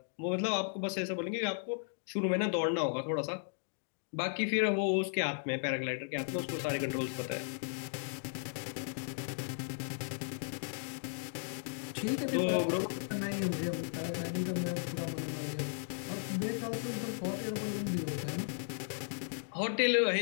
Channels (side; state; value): right; silent; digital silence